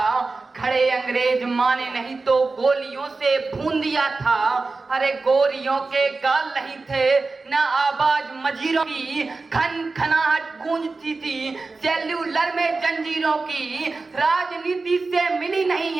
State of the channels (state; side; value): quieter; left; 3.8 dB